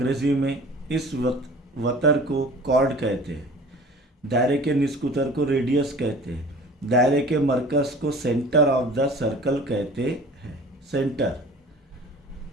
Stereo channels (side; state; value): both; normal; correlation 0.44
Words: में इस वतर को कॉर्ड कहते हैं। दायरे के निस्क उतर को रेडियस कहते हैं। दायरे के मरकज़ को सेंटर ऑफ द सर्कल कहते हैं, सेंटर।